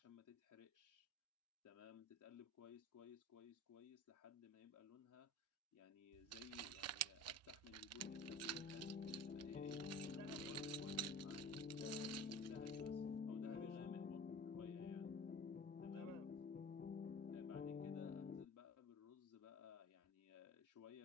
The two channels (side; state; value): both; normal; correlation 0.39